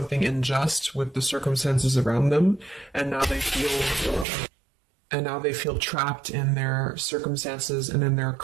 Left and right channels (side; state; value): left; drops out; at 4.2 s